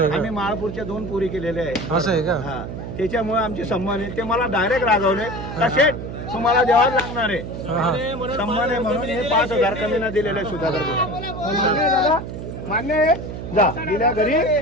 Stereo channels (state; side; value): noise; right; hum, 8 dB below the sound